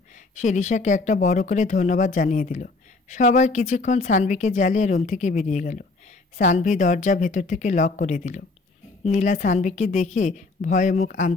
সে রিশাকে একটা বড় করে ধন্যবাদ জানিয়ে দিল। সবাই কিছুক্ষণ সানভীকে জ্বালিয়ে রুম থেকে বেরিয়ে গেল। সানভি দরজা ভেতর থেকে লক করে দিল। নীলা সানভীকে দেখে ভয়ে মুখ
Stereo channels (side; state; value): right; quieter; 3.6 dB